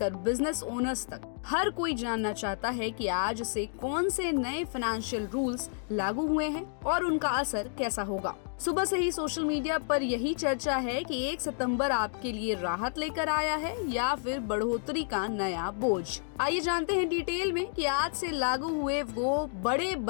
बिजनेस ओनर्स तक हर कोई जानना चाहता है कि आज से कौन से नए फाइनेंशियल रूल्स लागू हुए हैं और उनका असर कैसा होगा। सुबह से ही सोशल मीडिया पर यही चर्चा है कि 1 सितंबर आपके लिए राहत लेकर आया है या फिर बढ़ोतरी का नया बोझ। आइए जानते हैं डिटेल में कि आज से लागू हुए वो बड़े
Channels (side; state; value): right; silent; digital silence